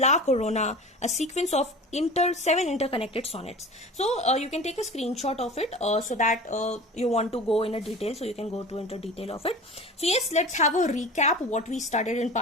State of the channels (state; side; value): normal; both; correlation 0.37